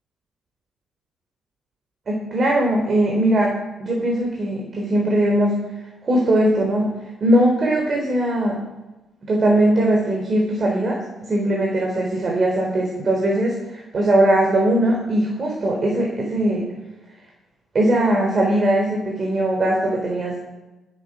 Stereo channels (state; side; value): normal; both; correlation 0.78